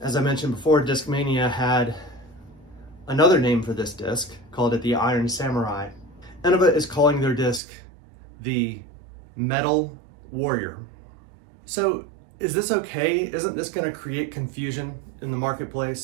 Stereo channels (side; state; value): left; drops out; at 7.6 s